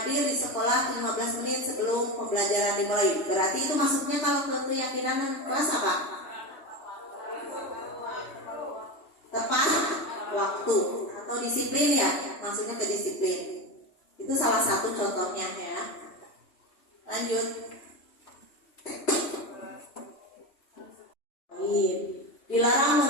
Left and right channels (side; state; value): right; late; 3.2 ms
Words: di sekolah 15 menit sebelum pembelajaran dimulai. Berarti itu masuknya kalau ke keyakinan kelas apa? Tepat waktu atau disiplin ya, maksudnya ke disiplin. Itu salah satu contohnya ya. Lanjut. Dilarang